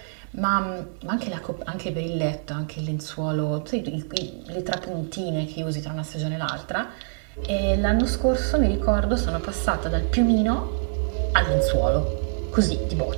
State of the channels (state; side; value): silent; left; digital silence